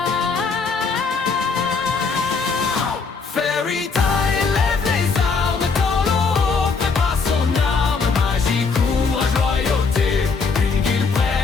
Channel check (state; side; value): quieter; right; 4.8 dB